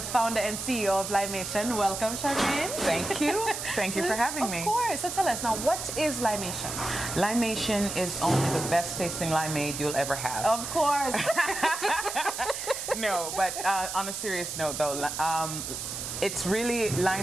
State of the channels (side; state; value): right; noise; hiss, 6 dB below the sound